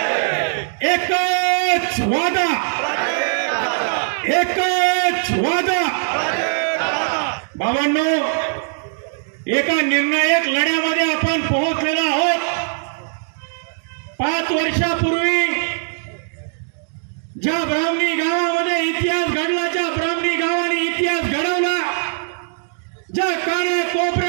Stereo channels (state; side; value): silent; left; digital silence